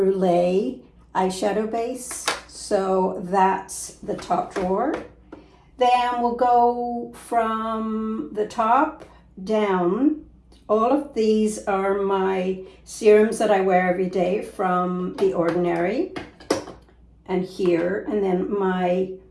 eyeshadow base. So that's the top drawer. Then we'll go from the top down. All of these are my serums that I wear every day from The Ordinary. And here, and then my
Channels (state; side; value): identical; both; correlation 1.00